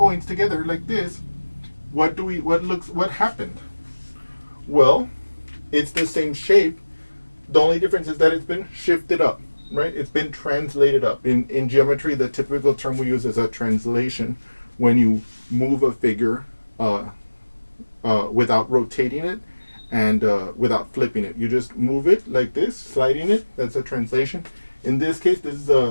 together like this, what happened? Well, it's the same shape. The only difference is that it's been shifted up, right? It's been translated up. In geometry, the typical term we use is a translation, when you move a figure without rotating it and without flipping it. You just move it like this, sliding it. That's a translation. In this case, this is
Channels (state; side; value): inverted; both; correlation -1.00